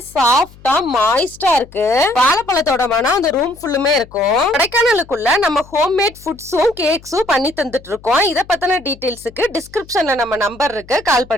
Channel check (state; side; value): noise; left; hum, 23 dB below the sound